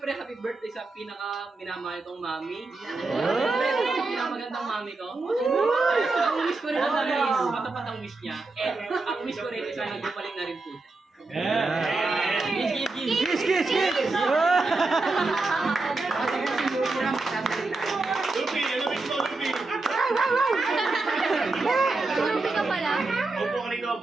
happy birthday sa pinaka minamahal kong mami. Siyempre, pinakamagandang mami ko. Ang wish ko rin ang dami is matapat ang wish niya. And ang wish ko rin is sana gumaling na rin po siya. Kiss, kiss, kiss! Lupi, ano miss mo, Lupi? Lupi ka pala? Opo ka rito,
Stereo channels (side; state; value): left; quieter; 3.4 dB